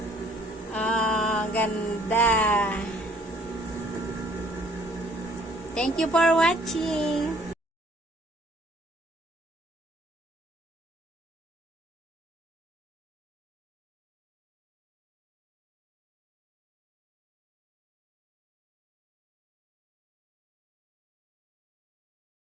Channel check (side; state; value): both; normal; correlation 0.60